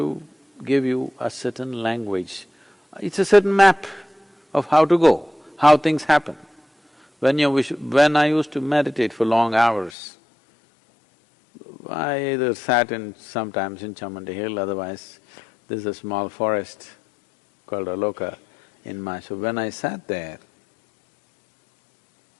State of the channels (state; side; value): drops out; right; at 9.9 s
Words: give you a certain language. It's a certain map of how to go, how things happen. When I used to meditate for long hours, I either sat sometimes in Chamundi Hill, otherwise there's a small forest called Aloka in Mysore. When I sat there,